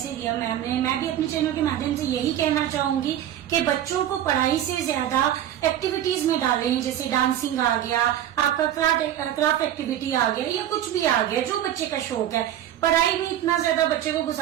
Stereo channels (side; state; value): left; quieter; 11.4 dB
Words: दिया मैम ने। मैं भी अपने चैनल के माध्यम से यही कहना चाहूंगी कि बच्चों को पढ़ाई से ज्यादा एक्टिविटीज में डालें, जैसे डांसिंग आ गया, आपका क्राफ्ट एक्टिविटी आ गया, या कुछ भी आ गया जो बच्चे का शौक है। पढ़ाई में इतना ज्यादा बच्चे को